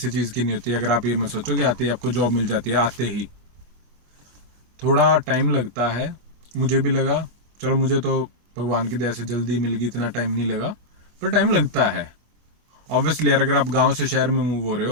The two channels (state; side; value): late; left; 25 ms